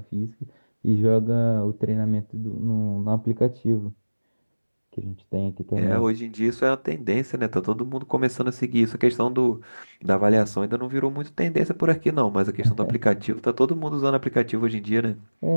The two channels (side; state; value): both; inverted; correlation -1.00